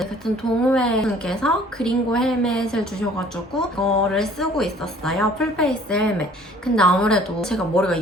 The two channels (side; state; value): both; normal; correlation 0.54